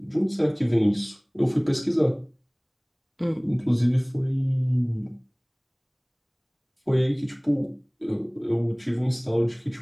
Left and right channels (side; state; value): both; identical; correlation 1.00